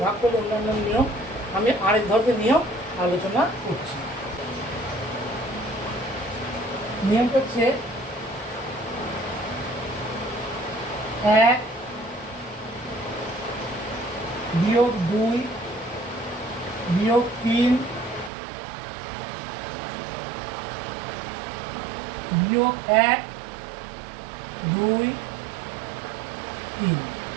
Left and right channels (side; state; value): left; drops out; at 18.3 s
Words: ভাগ করলে অন্যান্য নিয়ম, আমি আরেক ধরনের নিয়ম আলোচনা করছি। নিয়ম হচ্ছে 1 বিয়োগ 2 বিয়োগ 3 বিয়োগ 1 2 3,